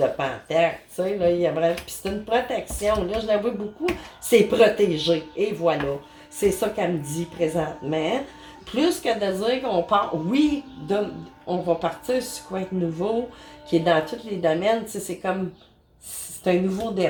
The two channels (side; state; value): both; identical; correlation 1.00